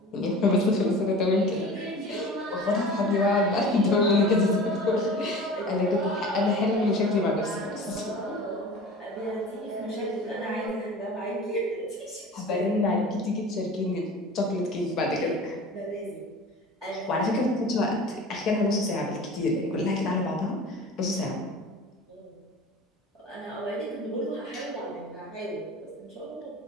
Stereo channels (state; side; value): normal; both; correlation 0.38